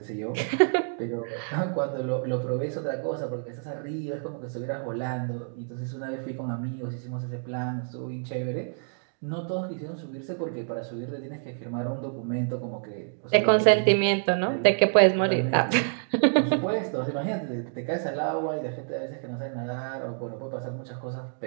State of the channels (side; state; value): left; silent; digital silence